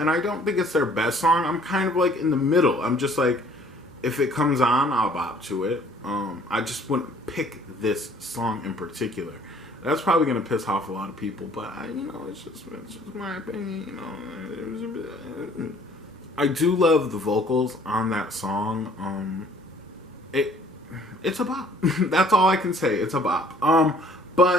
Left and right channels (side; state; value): both; normal; correlation 0.56